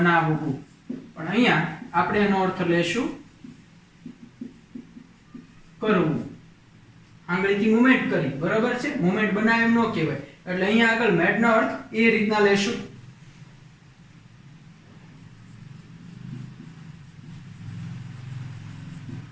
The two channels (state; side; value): identical; both; correlation 1.00